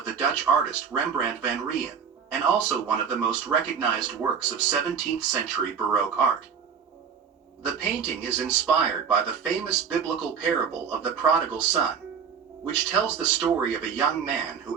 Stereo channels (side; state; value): left; quieter; 6.7 dB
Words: the Dutch artist Rembrandt van Rijn, and also one of the most recognized works of 17th century Baroque art. The painting is inspired by the famous biblical parable of the prodigal son, which tells the story of a young man